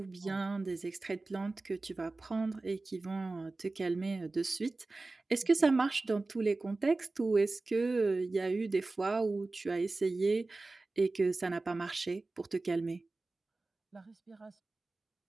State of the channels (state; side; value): quieter; left; 3.3 dB